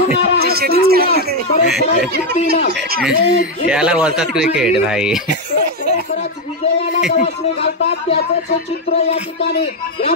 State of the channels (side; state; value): both; normal; correlation 0.04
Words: याला बोलतात क्रिकेट भाई. विजयाला गवसणी घालतात त्याचं चित्र या ठिकाणी